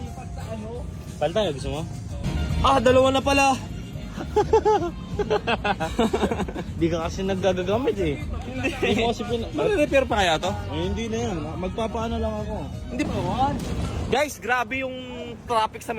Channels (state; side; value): identical; both; correlation 1.00